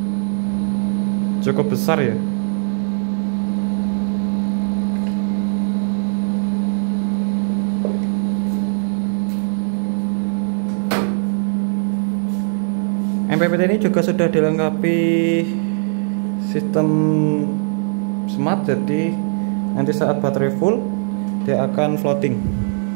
Cukup besar ya. MPPT ini juga sudah dilengkapi sistem smart, jadi nanti saat baterai full dia akan floating.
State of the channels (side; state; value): left; silent; digital silence